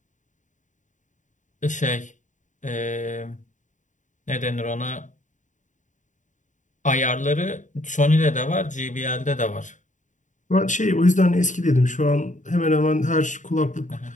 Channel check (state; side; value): late; right; 0.36 ms